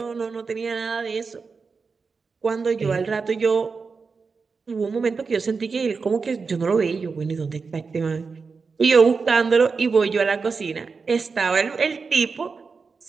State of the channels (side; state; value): left; quieter; 4.8 dB